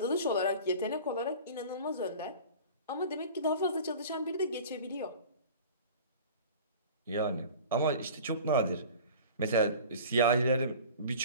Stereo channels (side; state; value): both; inverted; correlation -0.40